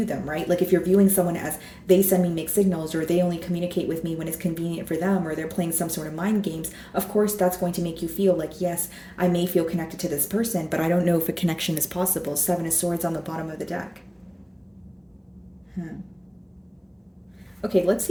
them, right? If you're viewing someone as they send me mixed signals, or they only communicate with me when it's convenient for them, or they're playing some sort of mind games, of course that's going to make you feel like, yes, I may feel connected to this person, but I don't know if a connection is possible. Seven of Swords on the bottom of the deck. Okay, let's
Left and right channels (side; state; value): both; identical; correlation 1.00